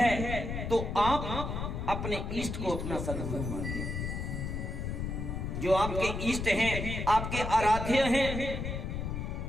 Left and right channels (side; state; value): left; noise; rumble, 3 dB below the sound